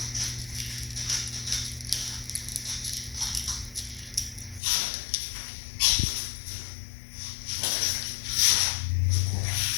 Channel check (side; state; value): right; drops out; at 4.6 s